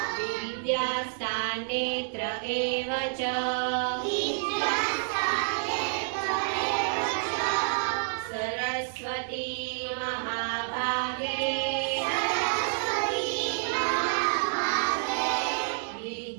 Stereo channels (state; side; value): silent; left; digital silence